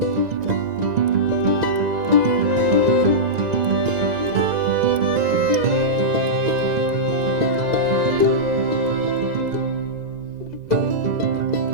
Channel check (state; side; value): late; left; 2.0 ms